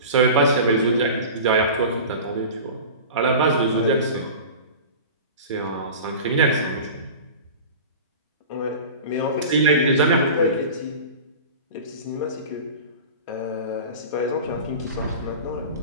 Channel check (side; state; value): both; inverted; correlation -0.34